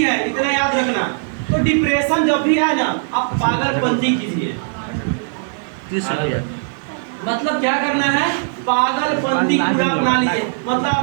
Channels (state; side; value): silent; left; 67 dB below the other